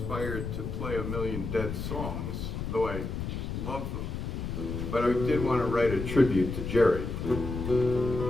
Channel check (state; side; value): noise; left; rumble, 4 dB below the sound